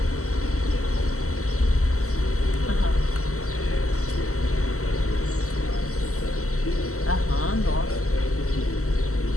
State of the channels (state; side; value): late; right; 0.64 ms